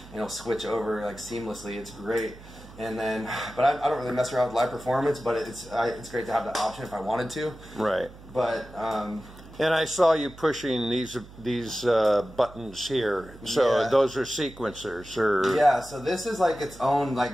and it'll switch over like seamlessly. It's great. And then, but I don't really mess around with live performance, but it's great to have that option if I wanted to. Right. But and I saw you pushing these buttons here. So yeah, those are sequencers, or yeah. So this is like its own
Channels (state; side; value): noise; right; hum, 19 dB below the sound